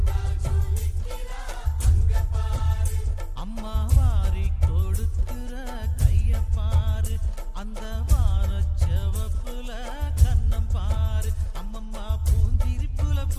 அம்மா வாரி கொடுக்கிற கைய பாரு, அந்த வானச்செவப்புல கண்ணம் பாரு, அம்மம்மா பூஞ்சிரிப்புல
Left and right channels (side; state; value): both; identical; correlation 1.00